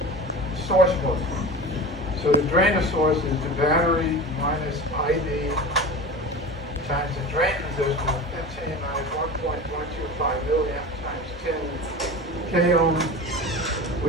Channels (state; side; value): normal; both; correlation 0.32